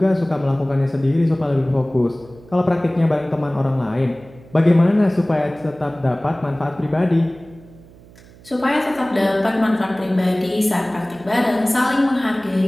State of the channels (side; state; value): right; noise; hum, 23 dB below the sound